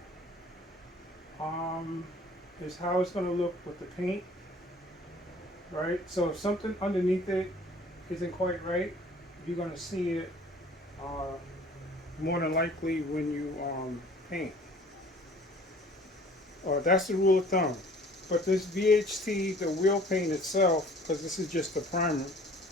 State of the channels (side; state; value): both; normal; correlation 0.51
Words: is how it's going to look with the paint. right? So if something underneath it isn't quite right, you're gonna see it uh, more than likely when you paint. That's the rule of thumb. But this VHT, the wheel paint itself, because this is just the primer,